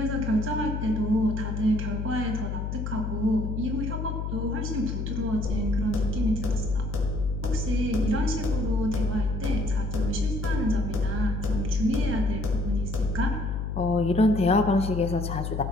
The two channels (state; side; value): noise; left; hum, 3 dB below the sound